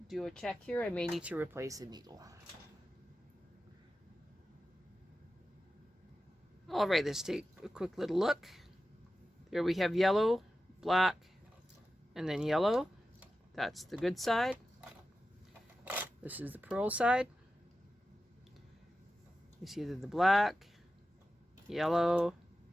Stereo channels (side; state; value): both; normal; correlation 0.93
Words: a check here. I may need to replace a needle. All right, let's take a quick little look. There we have yellow, black, and then yellow. That's the good side. This is the purl side. You see the black, yellow,